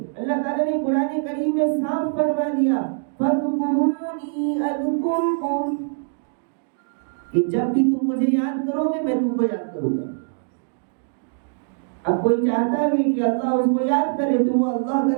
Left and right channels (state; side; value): silent; left; digital silence